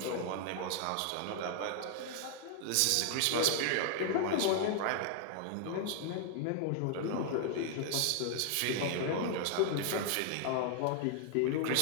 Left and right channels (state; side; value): different; both; correlation 0.00